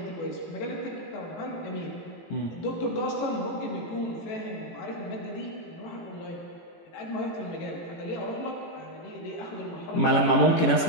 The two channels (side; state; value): right; late; 18 ms